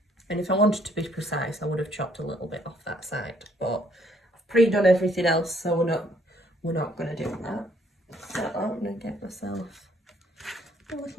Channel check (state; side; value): normal; both; correlation 0.66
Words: And if I wanted to be precise, I would have chopped a little bit off that side, but I've pre-done everything else, so we're not going to do that. So I'm going to get myself a